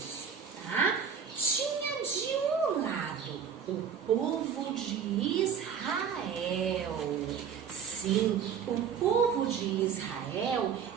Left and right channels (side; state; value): left; quieter; 7.3 dB